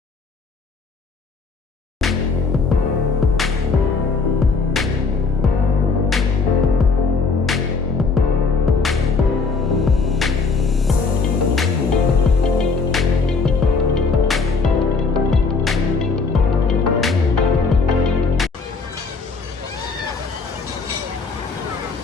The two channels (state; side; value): quieter; right; 4.5 dB